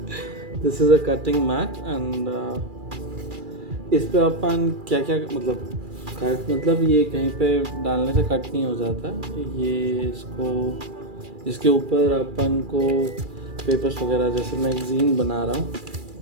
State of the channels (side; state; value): left; late; 2.4 ms